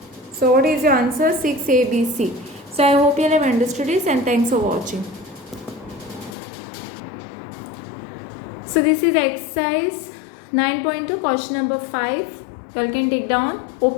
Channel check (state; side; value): drops out; right; at 6.4 s